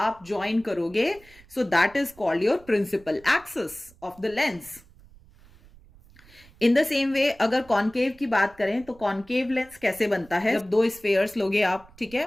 ज्वाइन करोगे, so that is called your principal axis of the lens. In the same way अगर कॉनकेव की बात करें तो कॉनकेव लेंस कैसे बनता है? जब दो स्फेयर्स लोगे आप, ठीक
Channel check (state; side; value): noise; right; rumble, 25 dB below the sound